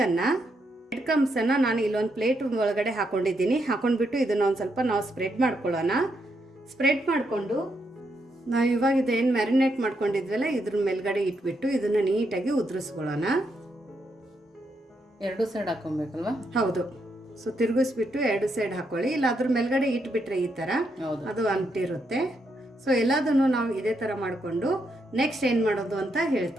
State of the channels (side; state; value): both; normal; correlation 0.79